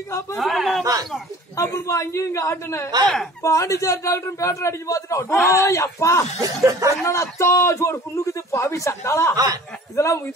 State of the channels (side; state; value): both; normal; correlation 0.46